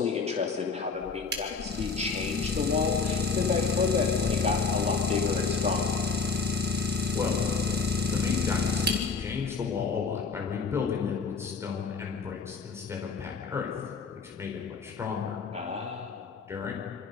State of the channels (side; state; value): right; quieter; 4.9 dB